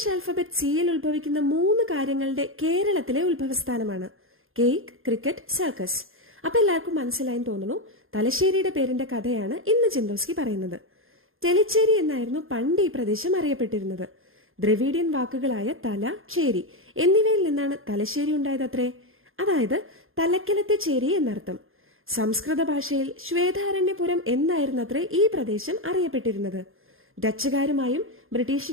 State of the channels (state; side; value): late; left; 0.60 ms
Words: ആൽഫബറ്റ് സിയിൽ ഉത്ഭവിക്കുന്ന 3 കാര്യങ്ങളുടെ കേരളത്തിലെ ഉത്ഭവസ്ഥാനമാണ്. Cake, cricket, circus. അപ്പൊ എല്ലാവർക്കും മനസ്സിലായി തോന്നുന്നു. തലശ്ശേരിയുടെ പേരിന്റെ കഥയാണ് ഇന്ന് ചിന്തോസ്കി പറയുന്നത്. തെളിച്ചേരി എന്നായിരുന്നു പണ്ട് ഈ പ്രദേശം അറിയപ്പെട്ടിരുന്നത്. ദ്രവീഡിയൻ വാക്കുകളായ തല, ചേരി എന്നിവയിൽ നിന്നാണ് തലശ്ശേരി ഉണ്ടായതത്രേ. അതായത് തലക്കലത്തെ ചേരി എന്നർത്ഥം. സംസ്കൃത ഭാഷയിൽ ശ്വേതാരണ്യപുരം എന്നായിരുന്നത്രേ ഈ പ്രദേശം അറിയപ്പെട്ടിരുന്നത്. ഡച്ചുകാരുമായും